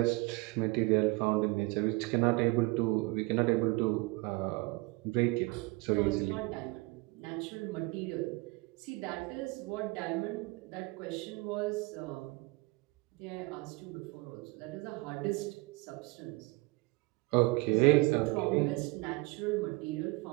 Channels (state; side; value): quieter; left; 24.9 dB